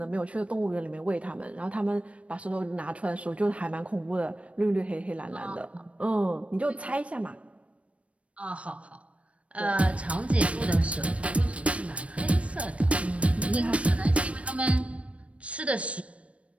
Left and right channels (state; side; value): late; left; 0.063 ms